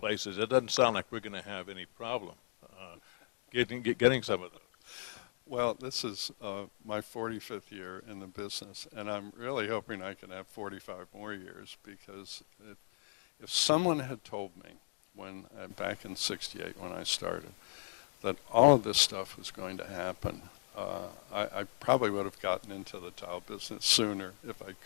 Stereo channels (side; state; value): right; silent; digital silence